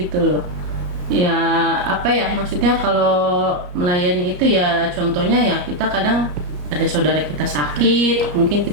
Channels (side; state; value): left; late; 34 ms